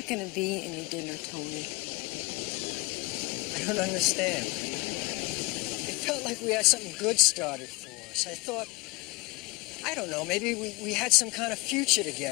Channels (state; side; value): quieter; right; 24.8 dB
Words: going to be any dinner, Tony. I don't understand. It felt like we had something good started for us. I thought, I don't know, maybe we had some kind of future